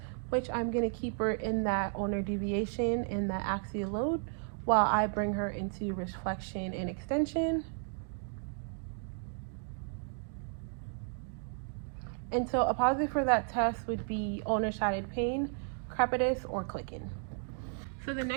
which I'm going to keep her in that ulnar deviation and that axial load while I bring her into wrist flexion and extension. And so a positive for that test would be ulnar sided pain, crepitus, or clicking. So the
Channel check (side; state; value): left; silent; 55 dB below the other